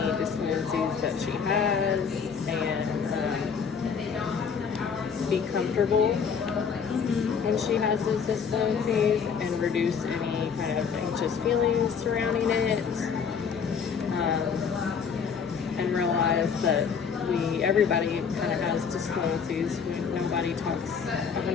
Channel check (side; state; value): right; quieter; 6.5 dB